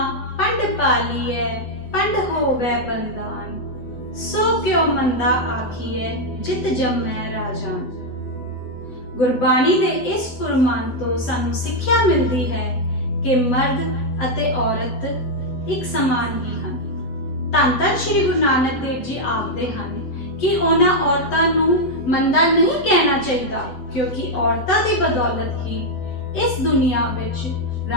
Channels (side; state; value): right; late; 8.0 ms